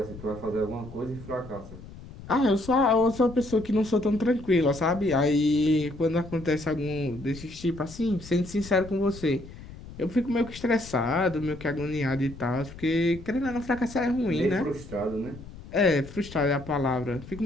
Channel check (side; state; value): left; noise; rumble, 15 dB below the sound